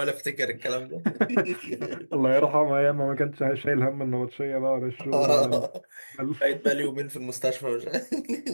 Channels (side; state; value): both; inverted; correlation -1.00